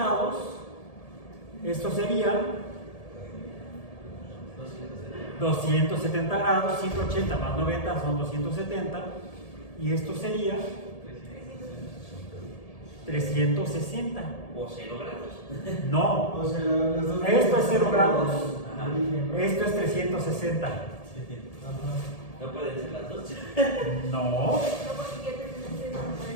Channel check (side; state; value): right; late; 1.7 ms